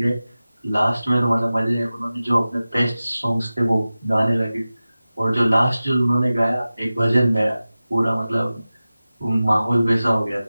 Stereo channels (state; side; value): inverted; both; correlation -0.96